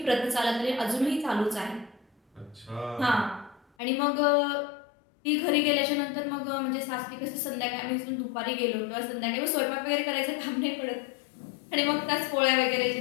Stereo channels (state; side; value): drops out; right; at 3.7 s